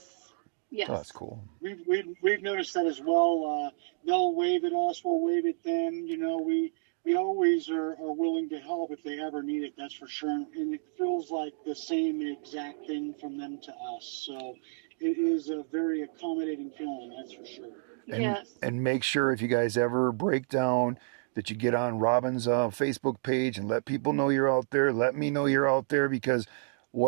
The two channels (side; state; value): left; silent; digital silence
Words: so that's cool. We've noticed that as well. They'll wave at us, we'll wave at them. We always are willing to help if they ever need it. That's for sure. And it feels like the same exact thing from them to us. So it is a very accommodating feeling. That's for sure. Yes. And make sure if you guys ever break down that you get on Robin's Facebook page and let people know you're out there. Let me know you're out there, because